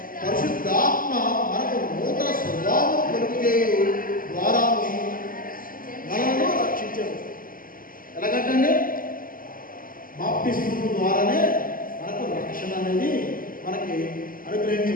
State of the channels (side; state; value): right; late; 0.41 ms